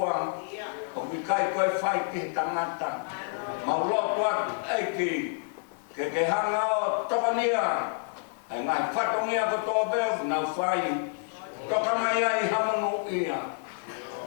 O mi kai koe whai ke tangata. Mau lotu atu eiki. Ke hanga o tokania. E ngai whatongia ko toa beu nau whai. Toka mai ai hamanu ia.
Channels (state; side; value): silent; right; 59 dB below the other